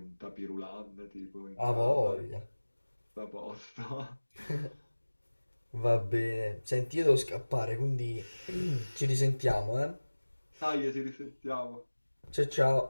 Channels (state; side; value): inverted; both; correlation -1.00